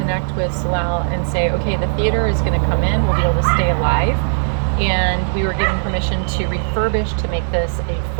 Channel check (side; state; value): left; silent; 63 dB below the other